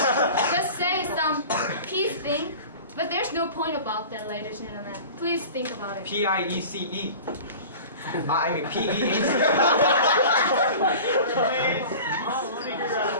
just say some peace thing, but there's no point about that, ladies and gentlemen. Please think about it. PIECE. I mean PEAC.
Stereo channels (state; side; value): inverted; both; correlation -0.38